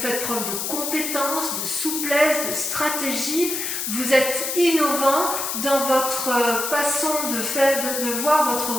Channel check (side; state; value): left; noise; hiss, 2 dB below the sound